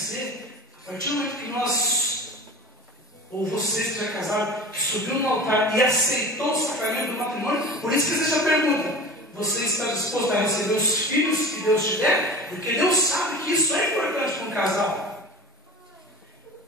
a partir do momento que nós, ou você que já é casado, que subiu no altar e aceitou o sacramento do matrimônio, por isso que existe a pergunta: você está disposto a receber os filhos que Deus te der? Porque Deus sabe que isso é importante para um casal.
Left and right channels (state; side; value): normal; both; correlation 0.36